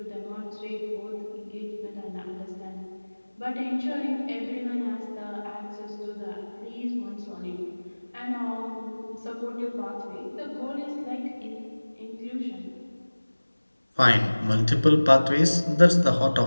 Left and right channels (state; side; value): inverted; both; correlation -1.00